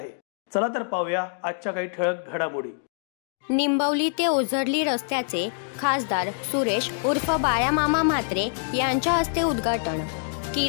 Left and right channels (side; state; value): right; silent; digital silence